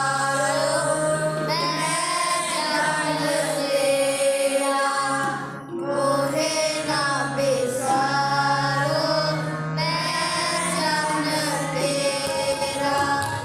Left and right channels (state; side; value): identical; both; correlation 1.00